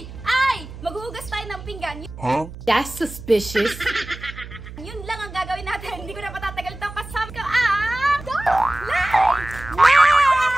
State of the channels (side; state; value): right; noise; hum, 14 dB below the sound